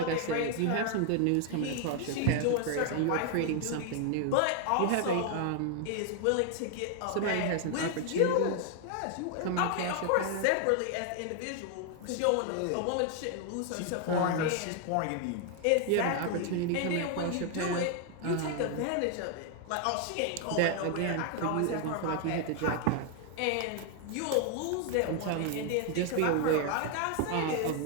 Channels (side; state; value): both; different; correlation 0.00